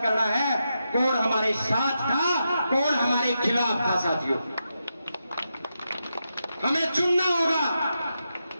करना है कौन हमारे साथ था, कौन हमारे खिलाफ था साथियों। हमें चुनना होगा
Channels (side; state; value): both; inverted; correlation -0.86